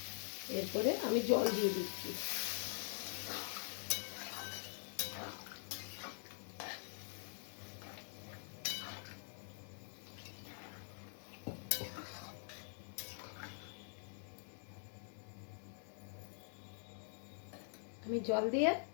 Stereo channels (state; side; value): silent; right; digital silence